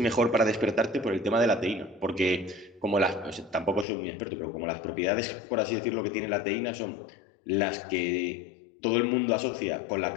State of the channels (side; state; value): right; drops out; at 3.9 s